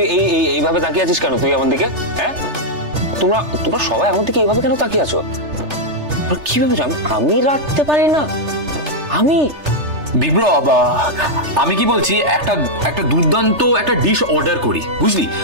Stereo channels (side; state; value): left; late; 3.3 ms